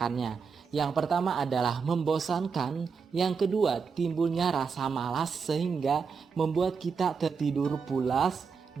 Yang pertama adalah membosankan, yang kedua timbulnya rasa malas sehingga membuat kita tertidur pulas,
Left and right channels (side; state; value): left; quieter; 5.6 dB